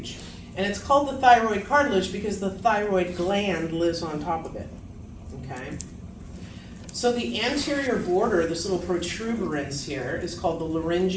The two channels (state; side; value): identical; both; correlation 1.00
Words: And it's called the thyroid cartilage because the thyroid gland lives on top of it, okay? So the anterior border, this little protuberance here, is called the